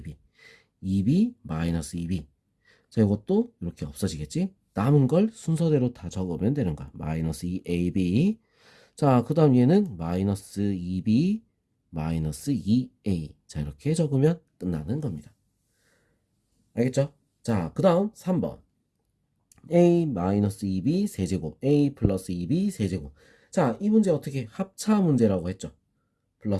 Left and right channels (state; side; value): identical; both; correlation 1.00